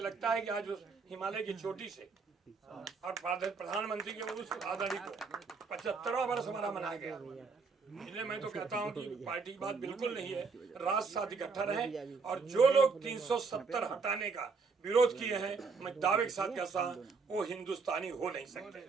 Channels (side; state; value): left; quieter; 4.8 dB